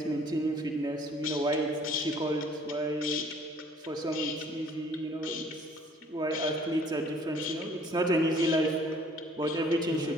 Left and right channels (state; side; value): normal; both; correlation 0.57